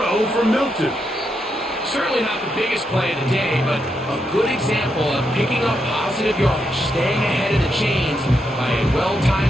from Milton. Certainly not the biggest play of the day, but a good example of picking up positive yardage, staying ahead of the chains by a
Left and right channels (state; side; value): normal; both; correlation 0.82